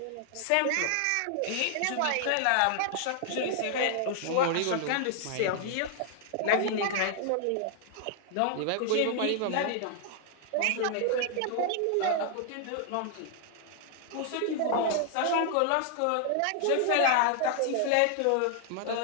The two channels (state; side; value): different; both; correlation 0.00